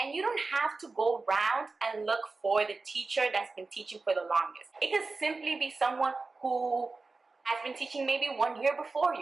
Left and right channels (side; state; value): left; quieter; 3.8 dB